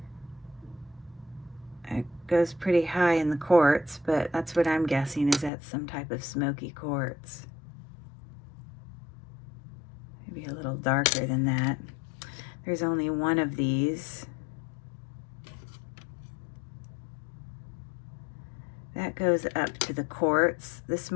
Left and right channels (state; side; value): drops out; right; at 5.5 s